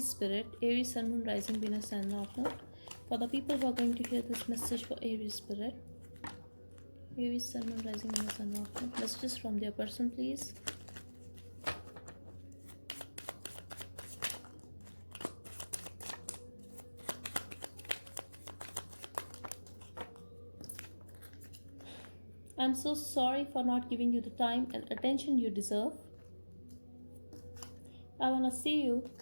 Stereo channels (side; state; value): both; inverted; correlation -1.00